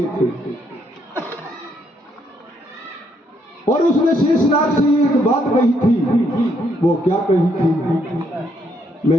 थे। और उसने शेषनाग से एक बात कही थी। वो क्या कही थी?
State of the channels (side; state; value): both; normal; correlation 0.73